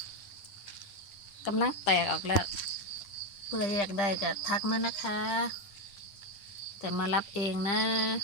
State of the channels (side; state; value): right; late; 9.9 ms